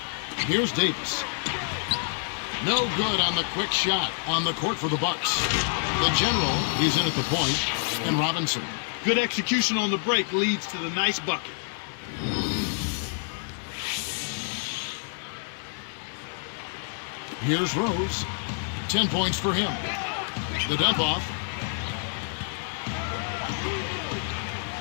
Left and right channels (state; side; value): silent; right; digital silence